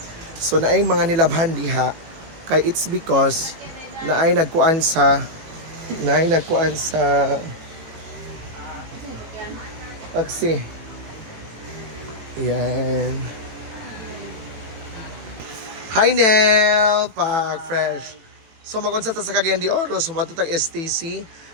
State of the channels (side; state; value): left; late; 18 ms